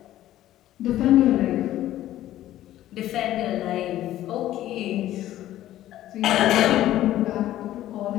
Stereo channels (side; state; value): right; quieter; 13.6 dB